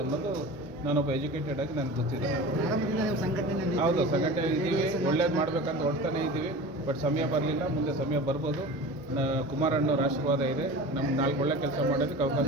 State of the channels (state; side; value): noise; right; rumble, 29 dB below the sound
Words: ಅನ್ನೋದು ನಾನೊಬ್ಬ ಎಜುಕೇಟೆಡ್ ಆಗಿ ನನಗೆ ಗೊತ್ತಿದೆ. ಹೌದು, ಸಂಘಟನೆ ಇದ್ದೀವಿ, ಒಳ್ಳೇದು ಮಾಡಬೇಕಂತ ಹೊಡ್ತಾನೆ ಇದ್ದೀವಿ. ಬಟ್ ಸಮಯ ಬರಲಿಲ್ಲ, ಮುಂದೆ ಸಮಯ ಬರ್ಬೋದು. ಕುಮಾರಣ್ಣವ್ರ ಆಶೀರ್ವಾದ ಇದೆ. ನಮ್ಗೆ 4 ಒಳ್ಳೆ ಕೆಲಸ ಮಾಡೋದಕ್ಕೆ